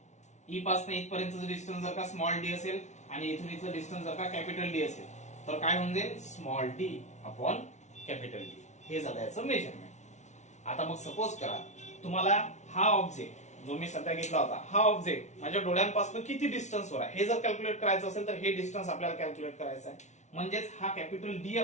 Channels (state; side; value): late; right; 0.33 ms